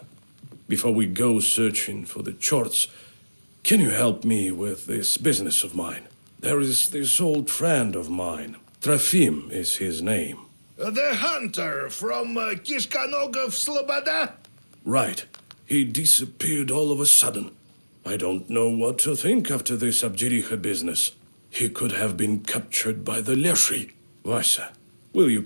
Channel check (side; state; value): both; inverted; correlation -1.00